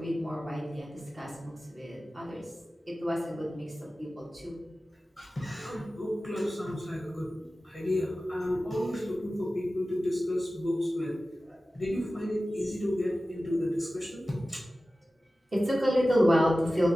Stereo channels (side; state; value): both; normal; correlation 0.95